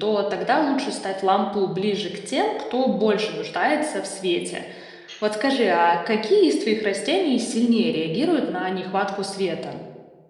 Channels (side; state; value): both; identical; correlation 1.00